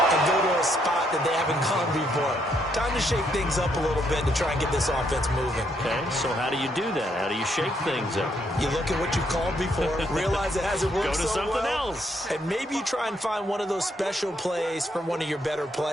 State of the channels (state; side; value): normal; both; correlation 0.74